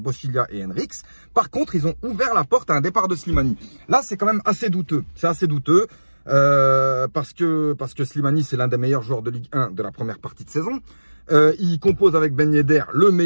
et Henriques. Par contre, ils ont ouvert la porte à un départ de Slimani. Là, c'est quand même assez douteux. C'est assez douteux. Parce que Slimani, c'est l'un des meilleurs joueurs de Ligue 1 de la première partie de saison. Il compose avec Ben Yedder le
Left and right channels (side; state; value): both; inverted; correlation -1.00